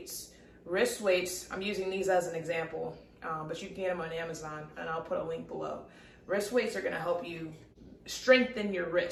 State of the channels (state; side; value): identical; both; correlation 1.00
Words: Wrist weights, I'm using these as an example, but you can get them on Amazon, and I'll put a link below. Wrist weights are going to help you strengthen your